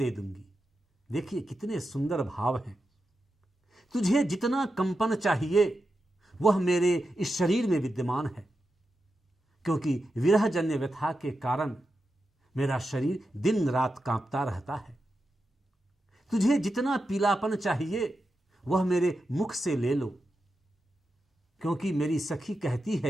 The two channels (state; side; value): normal; both; correlation 0.89